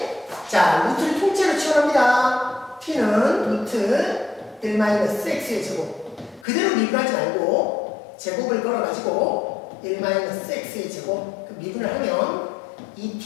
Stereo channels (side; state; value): right; drops out; at 6.5 s